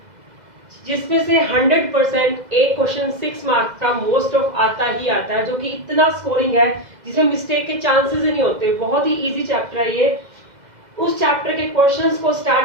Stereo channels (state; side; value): late; left; 2.0 ms